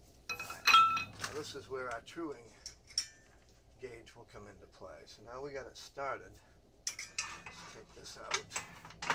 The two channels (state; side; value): identical; both; correlation 1.00